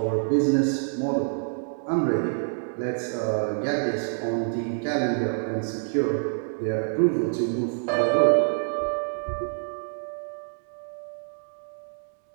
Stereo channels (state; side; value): silent; left; digital silence